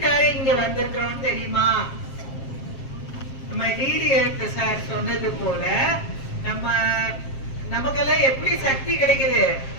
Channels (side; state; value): right; late; 7.5 ms